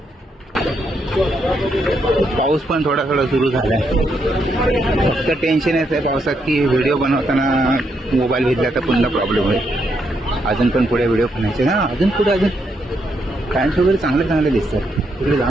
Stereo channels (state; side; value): normal; both; correlation 0.78